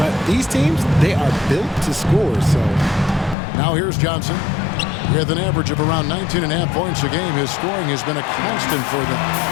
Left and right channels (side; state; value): right; drops out; at 3.4 s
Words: these teams, they are built to score, so. Now here's Johnson. With an average of around 19.5 points a game, his scoring has been a constant for them.